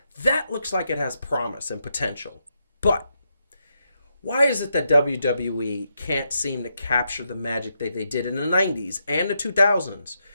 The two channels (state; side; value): inverted; both; correlation -0.82